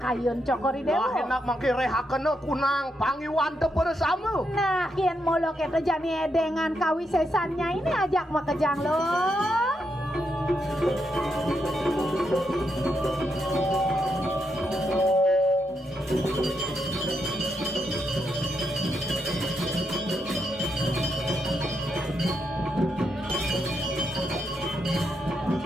kayun cokori dewa. Wah enak mangke rehakena kunang pangiwan teu bersama. Nah, kian molo kita jani edengan kawisesannya ini ajak makejang lo.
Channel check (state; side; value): normal; both; correlation 0.81